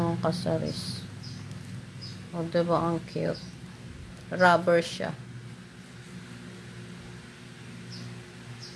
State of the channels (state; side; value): identical; both; correlation 1.00